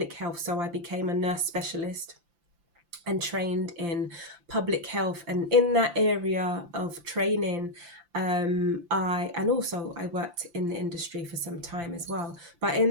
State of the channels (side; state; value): left; late; 5.8 ms